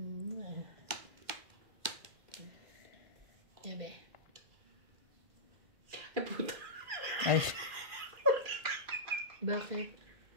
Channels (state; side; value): late; left; 1.5 ms